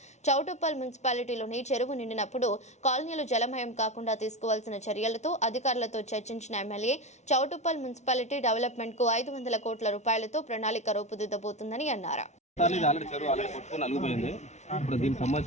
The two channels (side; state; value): right; late; 0.33 ms